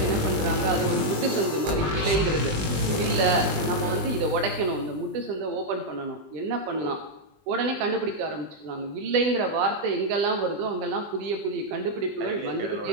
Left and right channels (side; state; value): left; late; 20 ms